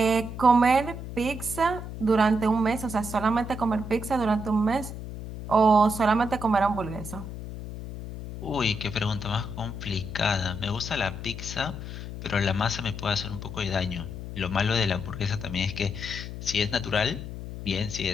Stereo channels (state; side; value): noise; left; hum, 9 dB below the sound